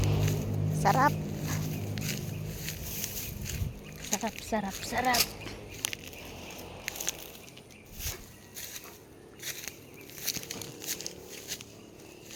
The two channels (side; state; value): both; identical; correlation 1.00